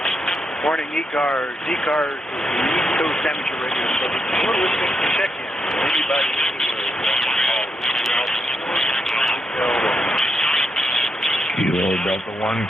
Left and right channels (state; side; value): normal; both; correlation 0.82